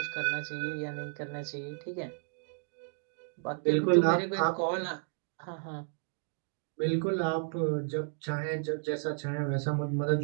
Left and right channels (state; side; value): silent; left; 56 dB below the other